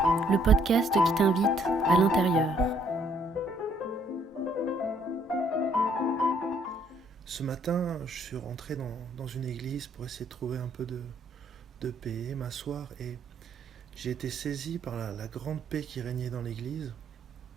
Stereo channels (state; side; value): normal; both; correlation 0.66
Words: le podcast qui t'invite à l'intérieur. Ce matin, je suis rentré dans une église pour essayer de trouver un peu de paix, m'asseoir, et j'ai été saisi par la grande paix qui régnait dans l'église.